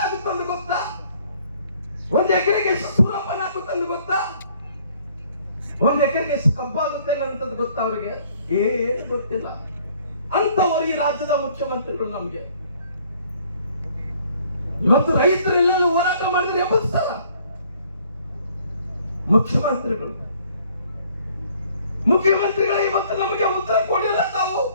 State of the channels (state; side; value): inverted; both; correlation -0.60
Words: ಆಗುತ್ತೆ ಅಂತ ಗೊತ್ತಾ? ಒಂದು ಎಕರೆಗೆ ಎಷ್ಟು ಸೂರಪ್ಪನ ಆಗುತ್ತೆ ಅಂತ ಗೊತ್ತಾ? ಒಂದು ಎಕರೆಗೆ ಎಷ್ಟು ಕಬ್ಬಾಗುತ್ತೆ ಅಂತದ್ದು ಗೊತ್ತಾ ಅವ್ರಿಗೆ? ಏನು ಗೊತ್ತಿಲ್ಲ. ಅಂತವರು ಈ ರಾಜ್ಯದ ಮುಖ್ಯಮಂತ್ರಿಗಳು. ನಮ್ಗೆ ಇವತ್ತು ರೈತರೆಲ್ಲ ಹೋರಾಟ ಮಾಡಿದ್ರೆ ಎಬ್ಬಿಸ್ತಾರ ಮುಖ್ಯಮಂತ್ರಿಗಳು. ಮುಖ್ಯಮಂತ್ರಿಗಳು ಇವತ್ತು ನಮಗೆ ಉತ್ತರ ಕೊಡಿಲ್ಲ. ತಾವು